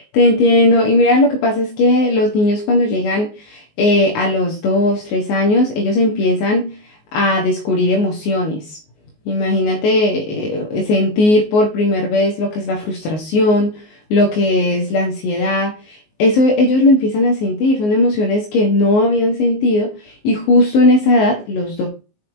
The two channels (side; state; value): right; late; 19 ms